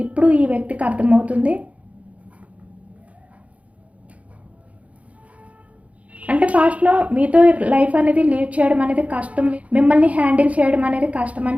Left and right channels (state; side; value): late; left; 0.066 ms